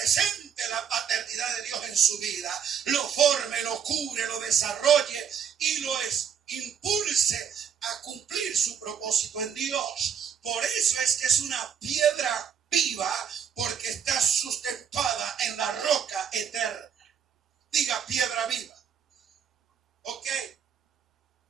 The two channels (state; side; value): quieter; left; 7.7 dB